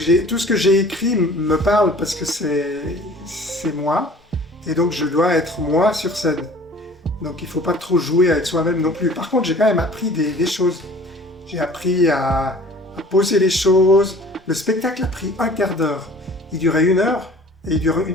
ce que j'ai écrit me parle parce que c'est moi, et donc je dois être moi sur scène. Donc il ne faut pas trop jouer avec soi-même non plus. Par contre, j'ai quand même appris des choses. J'ai appris à poser les choses. Le spectacle a pris un quart d'heure. Il durait 1 heure, et il dure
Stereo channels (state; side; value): normal; both; correlation 0.48